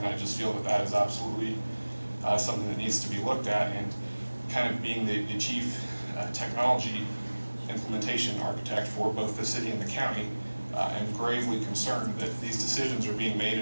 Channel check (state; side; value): inverted; both; correlation -1.00